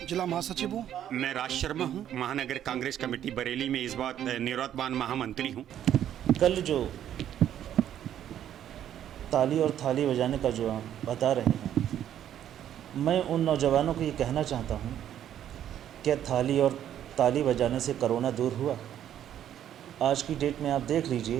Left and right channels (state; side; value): quieter; left; 10.6 dB